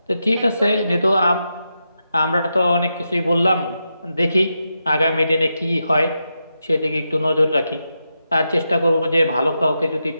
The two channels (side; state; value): both; inverted; correlation -0.87